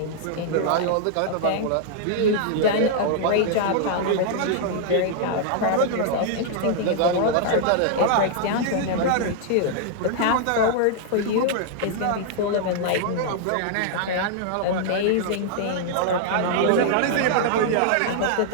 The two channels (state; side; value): different; both; correlation -0.01